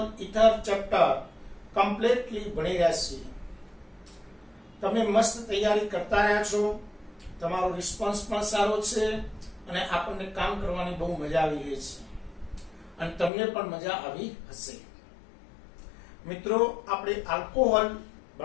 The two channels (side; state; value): right; drops out; at 13.3 s